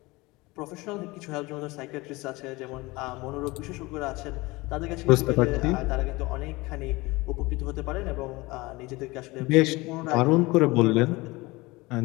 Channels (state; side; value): quieter; right; 22.4 dB